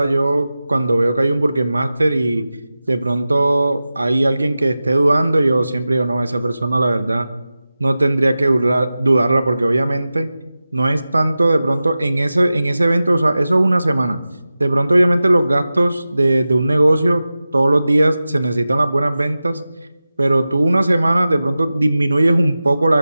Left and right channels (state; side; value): inverted; both; correlation -0.95